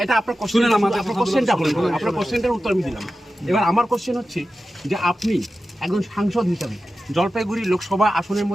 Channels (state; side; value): normal; both; correlation 0.93